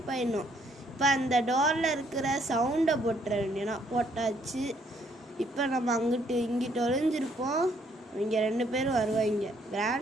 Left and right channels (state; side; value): normal; both; correlation 0.67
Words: ஆகிடணும். இப்போ அந்த டோரில் இருக்கிற சவுண்டை போட்டுற வேண்டியனா போட்டாச்சு. இப்போ நம்ம அங்கிட்டு இங்கிட்டு ஒளிஞ்சிருப்போம். இங்கே 2 பேரும் வருவாங்க.